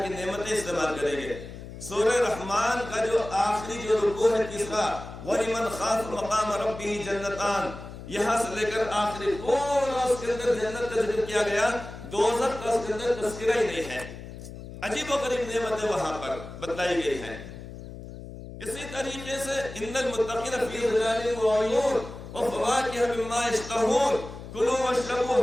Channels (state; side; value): noise; left; hum, 12 dB below the sound